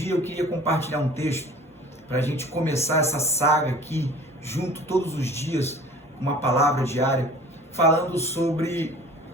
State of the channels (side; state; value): both; normal; correlation 0.46